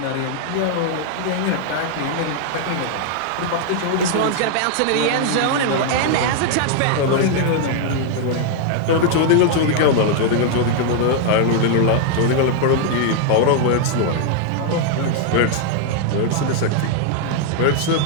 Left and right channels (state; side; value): different; both; correlation 0.00